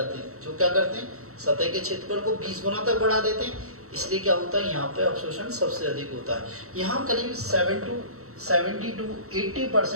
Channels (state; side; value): late; left; 0.64 ms